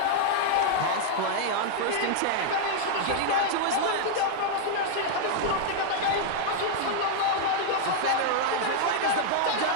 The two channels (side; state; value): both; different; correlation -0.01